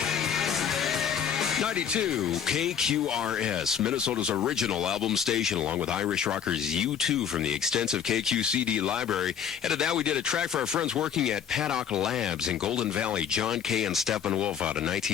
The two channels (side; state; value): right; quieter; 8.2 dB